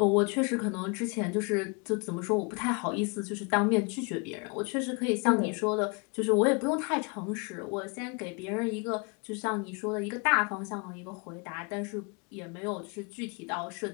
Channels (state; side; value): quieter; right; 32.7 dB